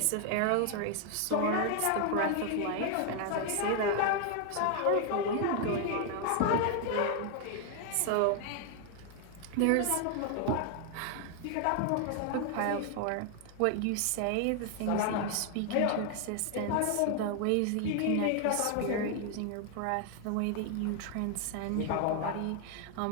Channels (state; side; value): different; both; correlation 0.00